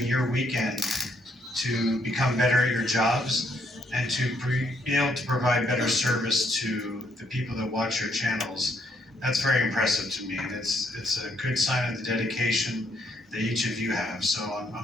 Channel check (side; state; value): both; normal; correlation 0.71